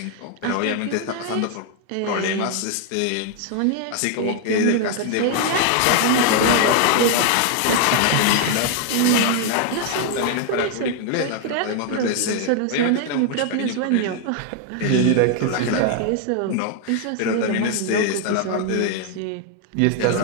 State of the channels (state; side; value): different; both; correlation 0.00